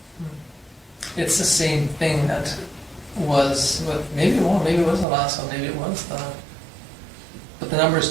It's the same thing that was with, maybe it was the last one, maybe it was the, but the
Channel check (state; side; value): drops out; left; at 5.1 s